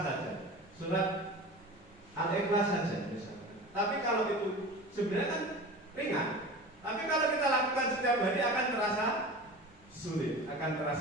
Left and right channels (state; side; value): normal; both; correlation 0.34